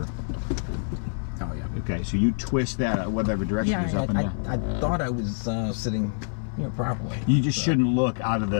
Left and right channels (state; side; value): silent; right; 61 dB below the other